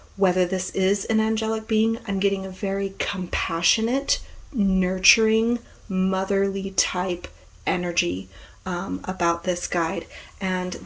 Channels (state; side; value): identical; both; correlation 1.00